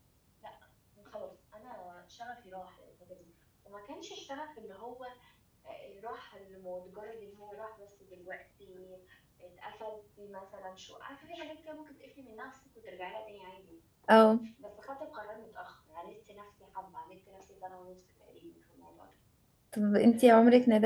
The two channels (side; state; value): both; identical; correlation 1.00